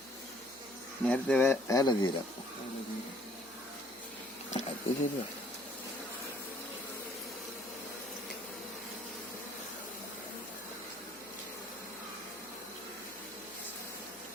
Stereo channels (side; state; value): right; noise; hum, 26 dB below the sound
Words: നേരത്തെ വേല തീരാം. അത് ശരിയാ.